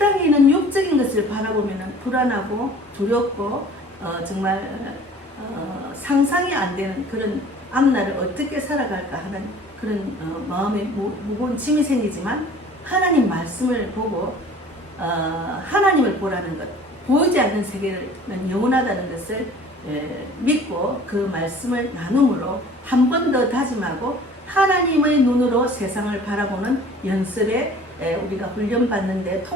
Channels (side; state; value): both; normal; correlation 0.48